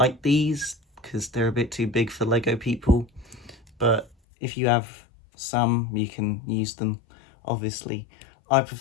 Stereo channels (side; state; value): right; drops out; at 4.2 s